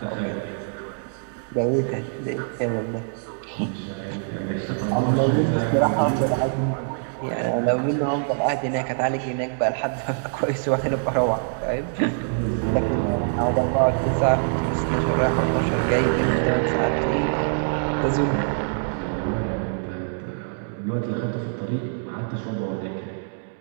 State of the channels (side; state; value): left; silent; digital silence